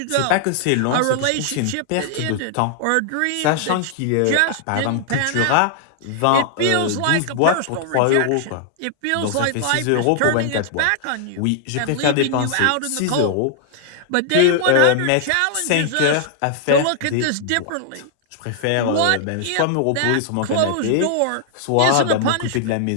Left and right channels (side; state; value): both; different; correlation 0.00